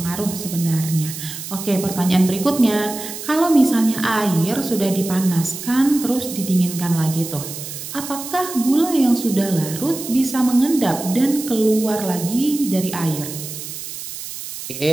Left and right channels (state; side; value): noise; right; hiss, 9 dB below the sound